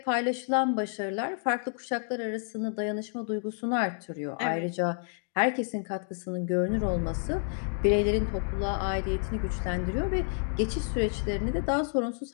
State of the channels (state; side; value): silent; right; digital silence